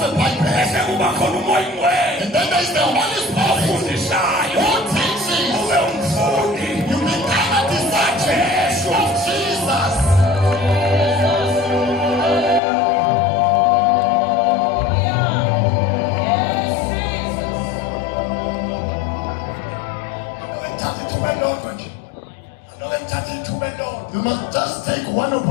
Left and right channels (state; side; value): drops out; right; at 12.6 s